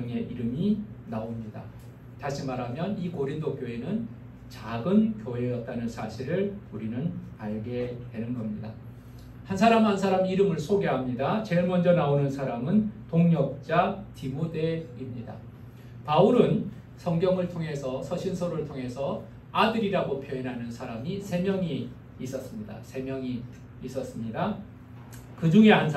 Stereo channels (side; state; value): both; identical; correlation 1.00